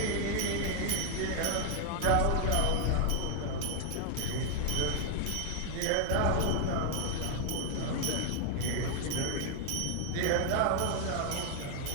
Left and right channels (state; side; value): different; both; correlation 0.00